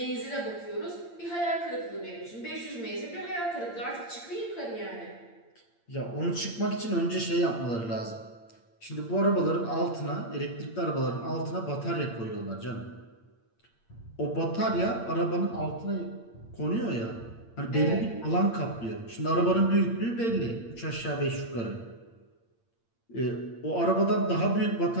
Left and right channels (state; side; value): late; right; 8.7 ms